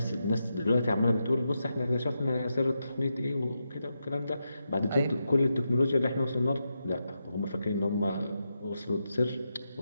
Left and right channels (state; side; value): inverted; both; correlation -0.86